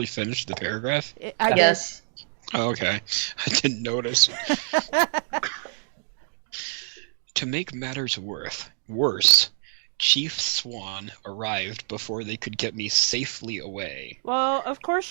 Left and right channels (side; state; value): left; silent; digital silence